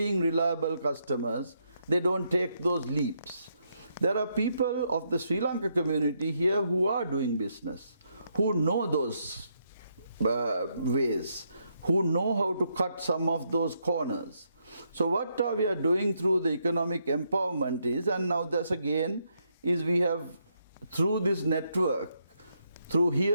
reliable customers, they don't take those leaps. There are people of the Sri Lanka community here who are doing business, who know those ways, who know how to cut some of those corners. So what we are doing through the economic empowerment is, and now this again, is we have, through this network, through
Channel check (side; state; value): both; inverted; correlation -0.77